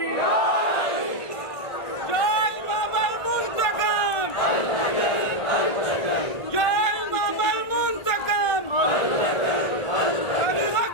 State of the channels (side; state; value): right; late; 1.5 ms